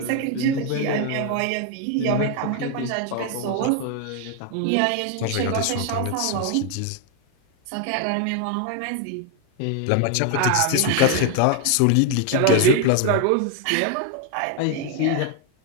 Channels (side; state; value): both; different; correlation 0.01